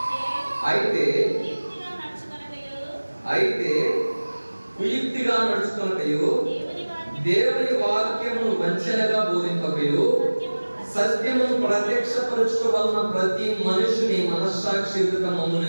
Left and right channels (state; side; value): inverted; both; correlation -1.00